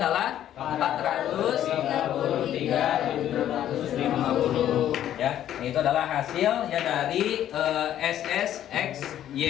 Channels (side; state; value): right; quieter; 11.4 dB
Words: adalah 433.750 ya. Itu adalah hasil ya dari